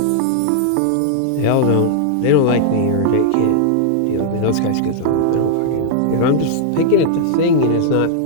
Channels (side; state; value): both; different; correlation -0.01